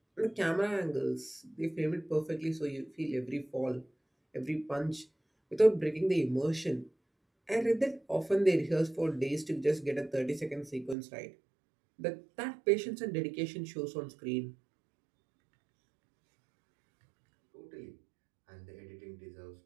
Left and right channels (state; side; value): drops out; left; at 11.0 s